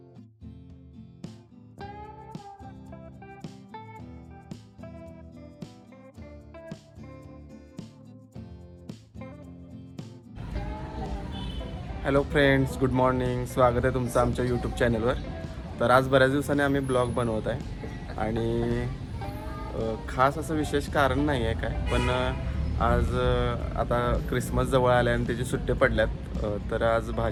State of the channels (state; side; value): identical; both; correlation 1.00